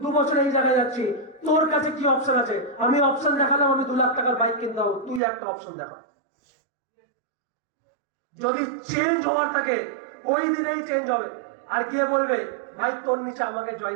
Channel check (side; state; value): left; drops out; at 5.2 s